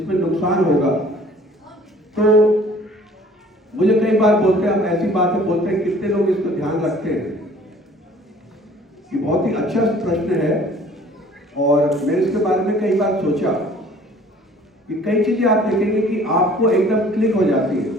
नुकसान होगा। तो मुझे कई बार बोलते हैं, हम ऐसी बातें बोलते हैं, कितने लोग इसको ध्यान रखते हैं। ये बहुत ही अच्छा प्रश्न है और मैंने इसके बारे में कई बार सोचा कि कई चीजें आप देखेंगे कि आपको एकदम क्लिक हो जाती है,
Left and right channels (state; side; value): normal; both; correlation 0.52